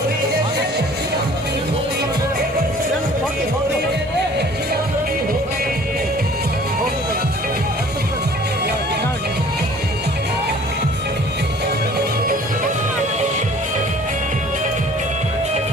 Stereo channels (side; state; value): both; normal; correlation 0.51